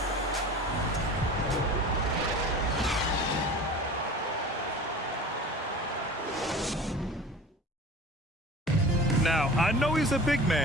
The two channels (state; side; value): normal; both; correlation 0.38